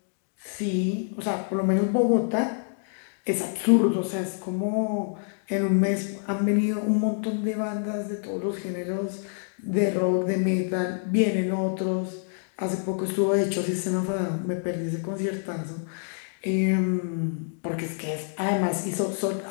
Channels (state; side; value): silent; right; digital silence